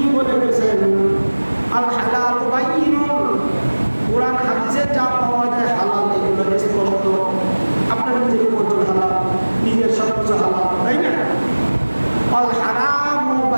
বলে গেছেন? আল হালাল বাইয়িন, কোরআন হাদিসে যা পাওয়া যায় হালাল এগুলো স্পষ্ট। আপনার নিজের পর্যন্ত হালাল, নিজের সবকিছু হালাল, তাই না? আল হারাম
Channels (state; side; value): inverted; both; correlation -1.00